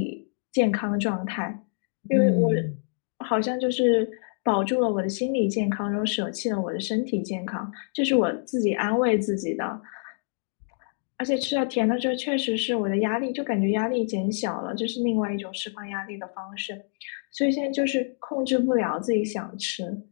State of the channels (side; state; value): right; silent; digital silence